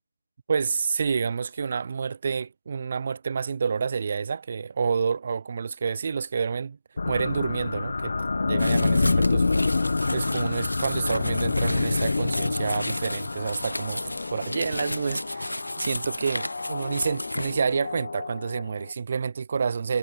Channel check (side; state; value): both; inverted; correlation -0.90